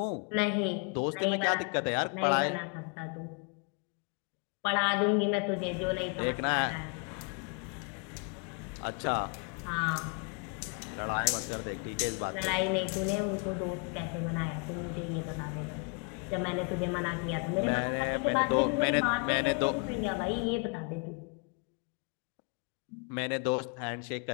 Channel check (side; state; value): right; quieter; 34.1 dB